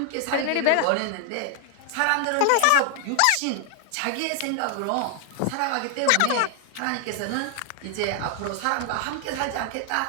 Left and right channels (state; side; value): different; both; correlation 0.00